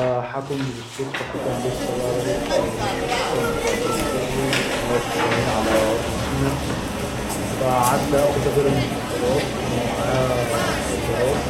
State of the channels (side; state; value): both; identical; correlation 1.00